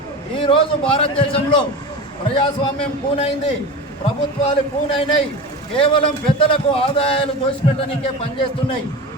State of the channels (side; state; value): both; normal; correlation 0.29